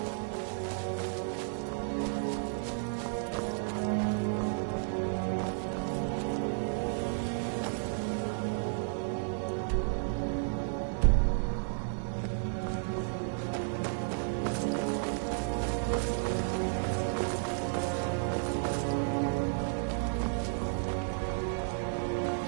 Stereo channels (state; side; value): silent; left; digital silence